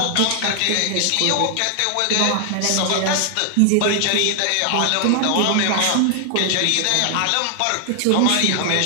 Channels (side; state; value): both; different; correlation 0.00